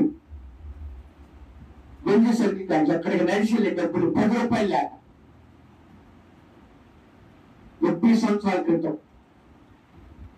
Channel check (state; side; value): identical; both; correlation 1.00